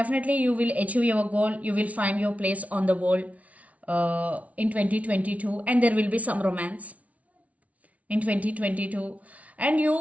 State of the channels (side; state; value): left; late; 0.068 ms